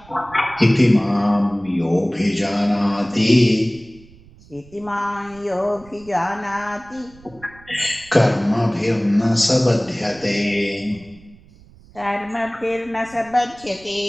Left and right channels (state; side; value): noise; right; rumble, 24 dB below the sound